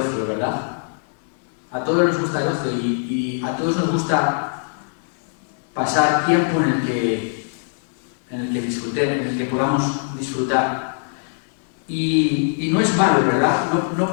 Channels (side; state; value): right; silent; digital silence